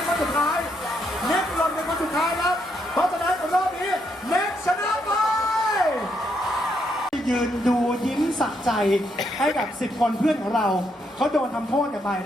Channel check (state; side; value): normal; both; correlation 0.76